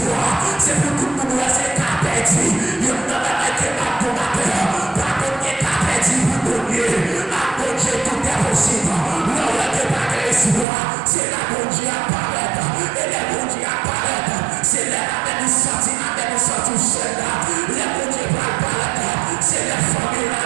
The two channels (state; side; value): drops out; left; at 10.7 s